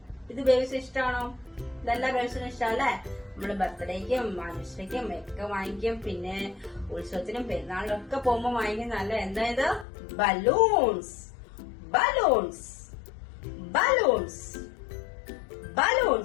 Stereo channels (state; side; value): drops out; right; at 9.9 s